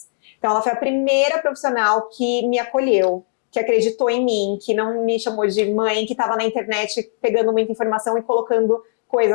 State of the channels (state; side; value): silent; right; digital silence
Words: Então, ela foi a primeira profissional que me acolheu, que acreditou em mim, que não me chamou de mãe, que estava na internet pegando muita informação e colocando